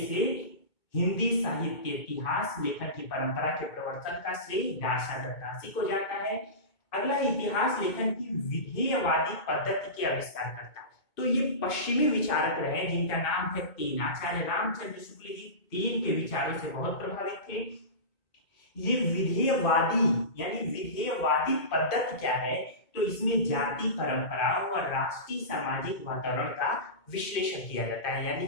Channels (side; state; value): right; late; 2.2 ms